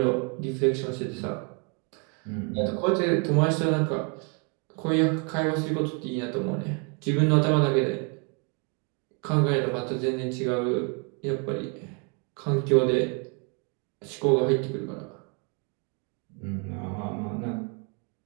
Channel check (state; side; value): quieter; left; 34.5 dB